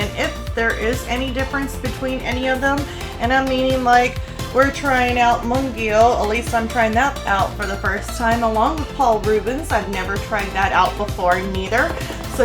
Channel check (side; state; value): both; identical; correlation 1.00